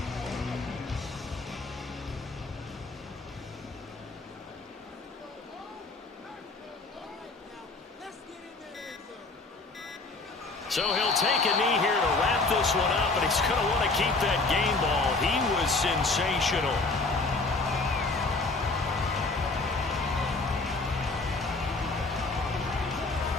So he'll take a knee here to wrap this one up, and he's going to want to keep that game ball. He was sensational.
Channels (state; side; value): quieter; right; 3.5 dB